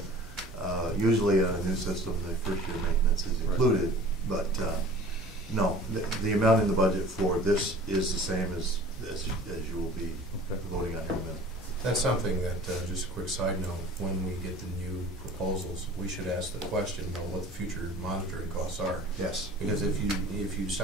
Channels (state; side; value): normal; both; correlation 0.45